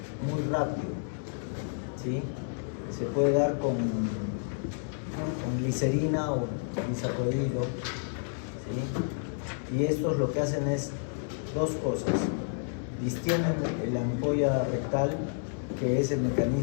muy rápido, ¿sí? Se puede dar con glicerina o bisacodylo, ¿sí? Y estos lo que hacen es dos cosas: distienden la ampolla rectal, que es el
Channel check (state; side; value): silent; right; digital silence